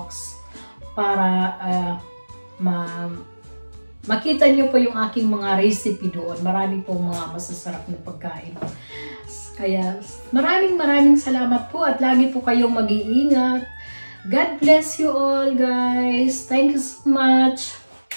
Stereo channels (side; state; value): both; inverted; correlation -1.00